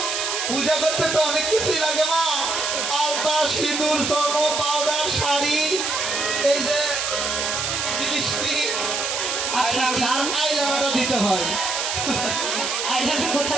পূজা করতে তো অনেক কিছুই লাগে মা। আলতা, সিঁদুর, স্বর্ণ, পাউডার, শাড়ি, এই যে লিপস্টিক, আচ্ছা আচ্ছা আর আইলাইনারও দিতে হয়। আইলাটা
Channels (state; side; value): noise; right; hiss, 1 dB below the sound